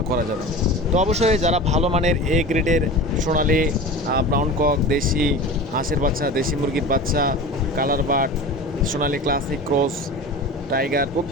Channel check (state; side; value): normal; both; correlation 0.34